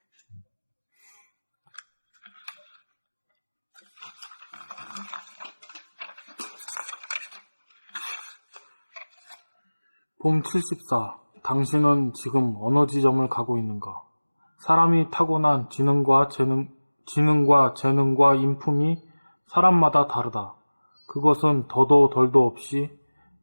봄 74. 당신은 지금 어느 지점을 가고 있는가? 사람이 타고난 지능과 재능과 인품이 사람마다 다르다. 그것은 더도 덜도 없이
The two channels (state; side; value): inverted; both; correlation -1.00